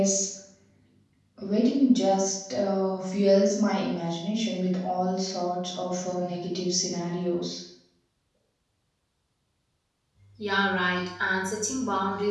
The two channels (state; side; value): identical; both; correlation 1.00